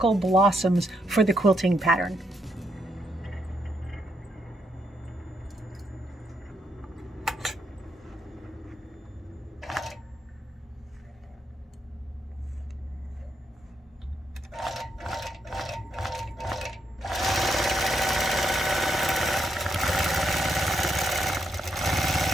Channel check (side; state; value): both; normal; correlation 0.78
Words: blossoms for the quilting pattern.